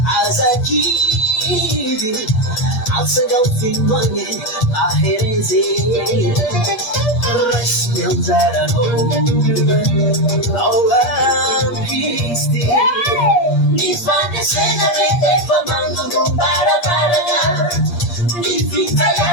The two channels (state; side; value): late; right; 8.5 ms